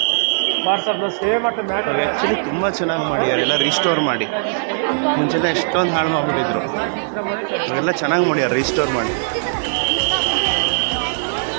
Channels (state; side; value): silent; left; 66 dB below the other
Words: ಆ್ಯಕ್ಚುಲಿ ತುಂಬ ಚೆನ್ನಾಗಿ ಮಾಡಿದ್ದಾರೆ, ಎಲ್ಲ ರೀಸ್ಟೋರ್ ಮಾಡಿ. ಮುಂಚೆಲ್ಲ ಎಷ್ಟೊಂದು ಹಾಳು ಮಾಡಿಬಿಟ್ಟಿದ್ರು, ಇವಾಗೆಲ್ಲ ಚೆನ್ನಾಗಿ ಮಾಡ್ಯಾರ ರೀಸ್ಟೋರ್ ಮಾಡಿ.